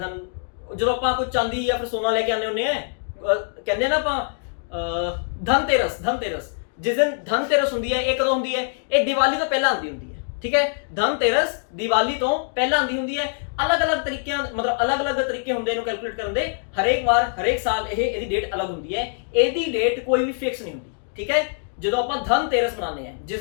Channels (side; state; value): right; silent; digital silence